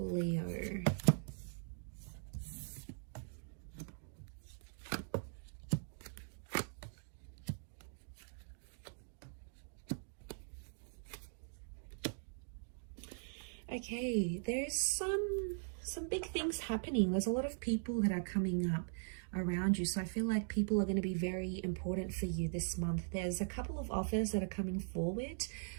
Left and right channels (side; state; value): left; silent; digital silence